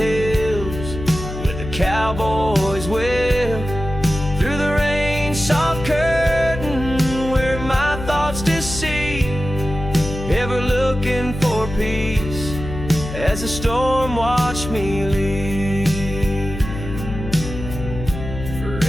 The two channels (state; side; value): noise; left; hum, 8 dB below the sound